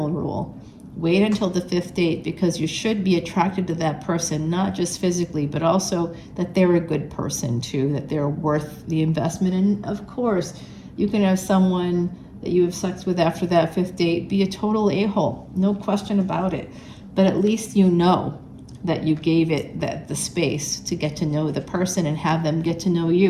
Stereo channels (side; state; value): both; identical; correlation 1.00